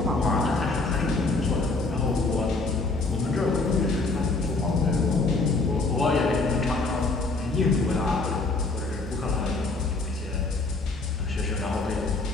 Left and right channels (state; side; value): quieter; right; 3.4 dB